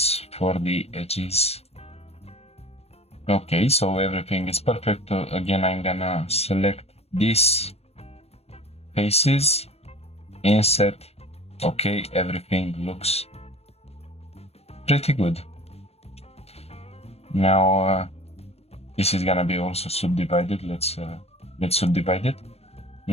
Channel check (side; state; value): right; late; 0.30 ms